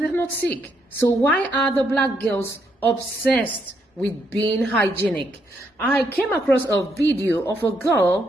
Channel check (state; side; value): normal; both; correlation 0.76